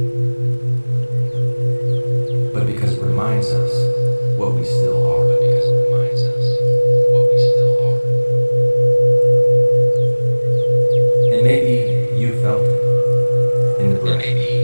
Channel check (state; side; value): inverted; both; correlation -1.00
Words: but because it reminds us what we still are. And maybe you felt it in the breath